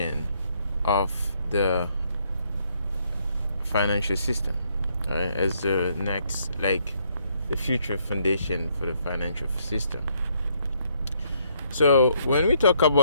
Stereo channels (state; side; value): inverted; both; correlation -0.71